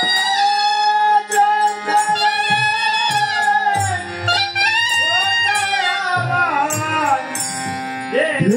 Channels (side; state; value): both; identical; correlation 1.00